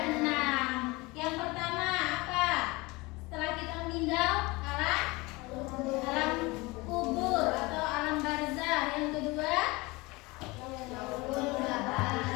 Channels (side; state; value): right; quieter; 23.7 dB